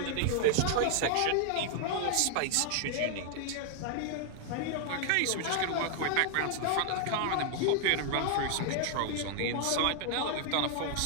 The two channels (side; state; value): both; different; correlation 0.00